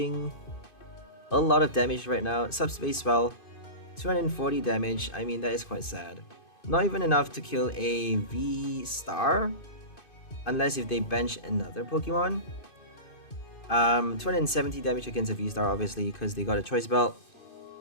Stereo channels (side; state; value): right; late; 2.5 ms